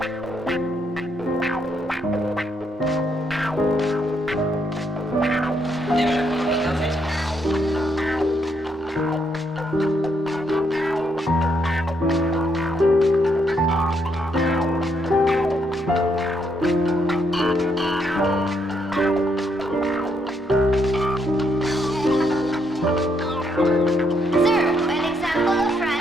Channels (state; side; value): normal; both; correlation 0.75